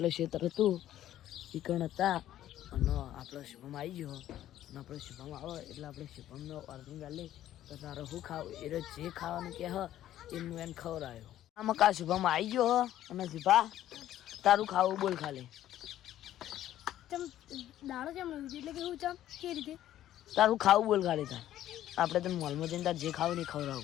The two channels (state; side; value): quieter; right; 12.6 dB